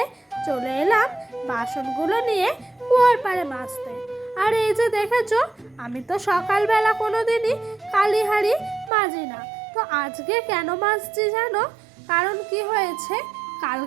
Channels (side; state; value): left; drops out; at 8.9 s